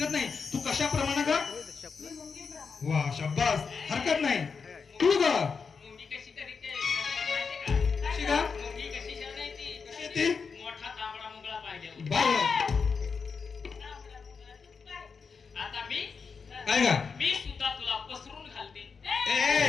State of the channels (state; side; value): quieter; right; 5.4 dB